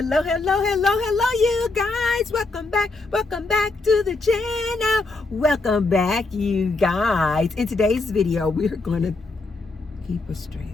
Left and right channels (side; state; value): right; quieter; 3.5 dB